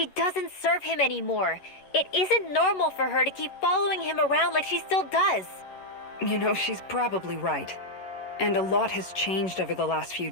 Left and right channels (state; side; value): late; right; 11 ms